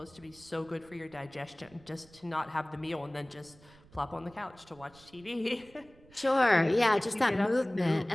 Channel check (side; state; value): right; noise; rumble, 25 dB below the sound